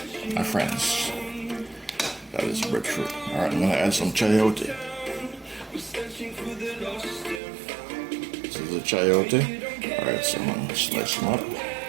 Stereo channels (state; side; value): drops out; left; at 7.4 s